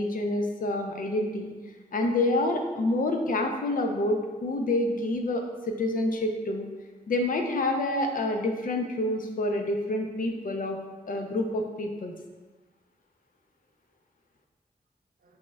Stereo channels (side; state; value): both; normal; correlation 0.39